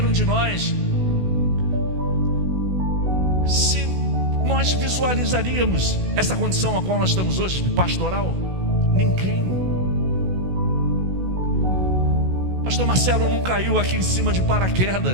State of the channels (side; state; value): left; late; 16 ms